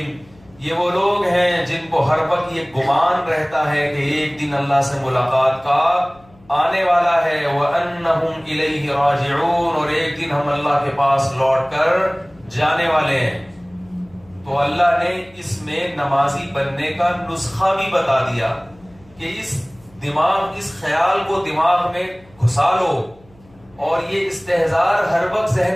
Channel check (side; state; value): left; noise; hum, 28 dB below the sound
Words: یہ وہ لوگ ہیں جن کو ہر وقت یہ گمان رہتا ہے کہ ایک دن اللہ سے ملاقات کا آنے والا ہے. وَأَنَّهُمْ إِلَيْهِ رَاجِعُونَ، اور ایک دن ہم اللہ کے پاس لوٹ کر جانے والے ہیں. تو اللہ نے اس میں نمازی بننے کا نسخہ بھی بتا دیا کہ اس خیال کو دماغ میں گھسا لو اور یہ استحضار ہر وقت